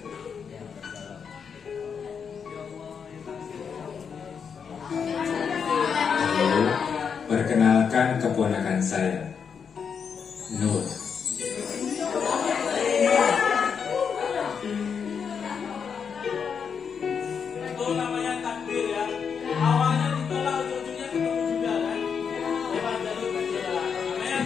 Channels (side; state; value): right; quieter; 6.6 dB